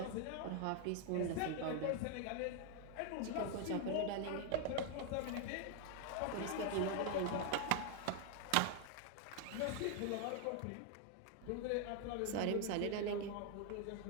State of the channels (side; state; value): both; different; correlation 0.00